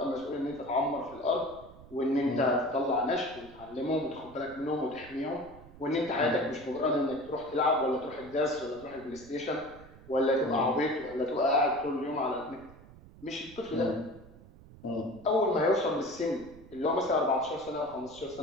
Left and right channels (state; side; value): noise; right; rumble, 20 dB below the sound